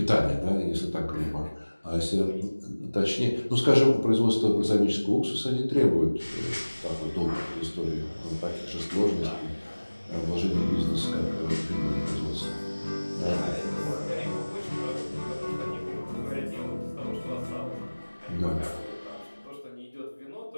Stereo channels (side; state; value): both; inverted; correlation -1.00